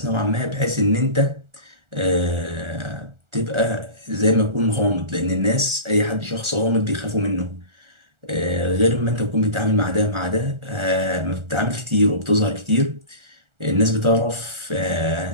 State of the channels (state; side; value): late; left; 1.4 ms